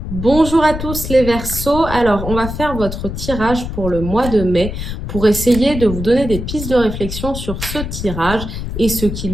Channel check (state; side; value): noise; left; rumble, 6 dB below the sound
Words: Bonjour à tous les Verseaux. Alors, on va faire votre tirage pour le mois de mai pour essayer de vous donner des pistes de réflexion sur ce tirage et ce